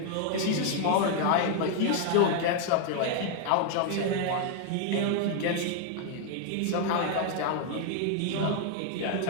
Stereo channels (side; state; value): both; different; correlation 0.00